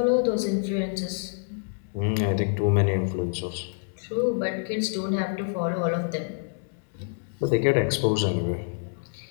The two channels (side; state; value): right; silent; 60 dB below the other